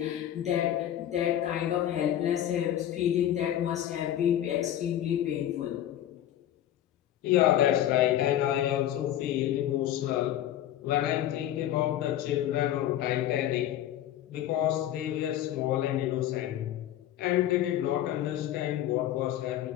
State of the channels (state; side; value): quieter; right; 12.0 dB